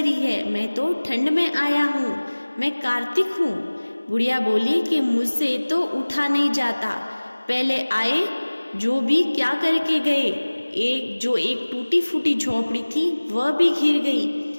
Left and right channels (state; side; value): inverted; both; correlation -1.00